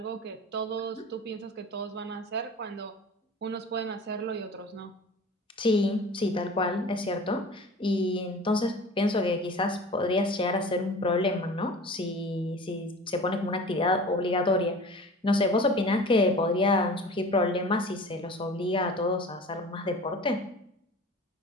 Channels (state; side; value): normal; both; correlation 0.40